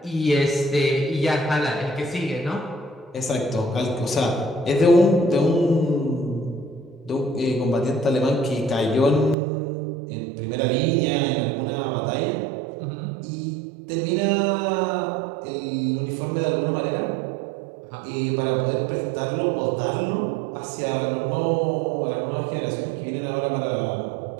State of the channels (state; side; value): drops out; left; at 9.3 s